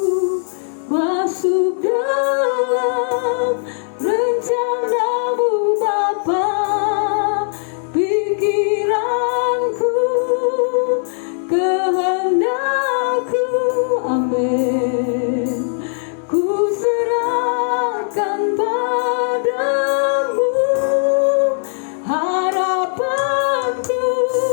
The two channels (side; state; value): right; silent; digital silence